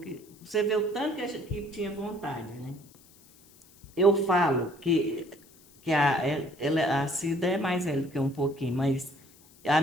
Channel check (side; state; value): left; noise; hiss, 27 dB below the sound